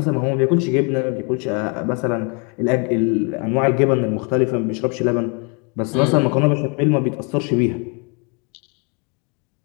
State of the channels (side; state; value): right; quieter; 34.3 dB